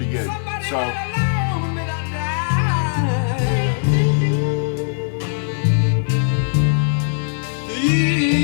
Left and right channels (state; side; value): silent; right; digital silence